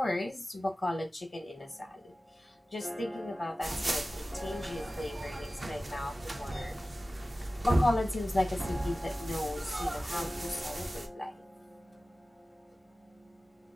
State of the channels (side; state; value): both; normal; correlation 0.96